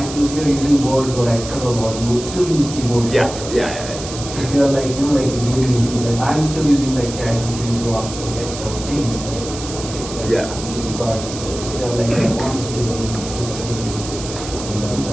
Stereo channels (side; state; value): right; noise; hiss, 10 dB below the sound